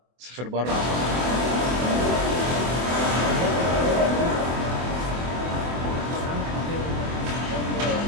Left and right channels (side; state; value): left; late; 24 ms